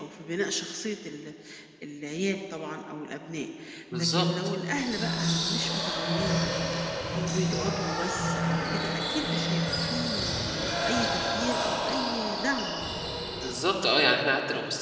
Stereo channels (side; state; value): both; identical; correlation 1.00